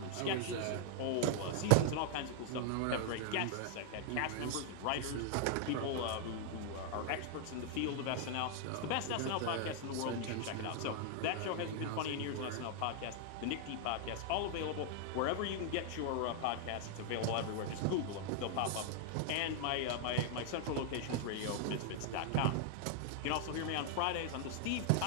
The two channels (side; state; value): both; different; correlation 0.00